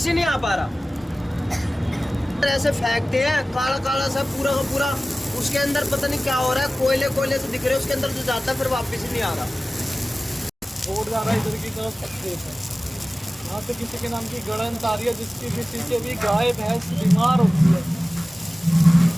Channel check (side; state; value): both; normal; correlation 0.97